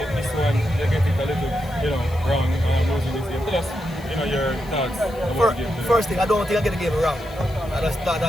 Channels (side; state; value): left; noise; hiss, 23 dB below the sound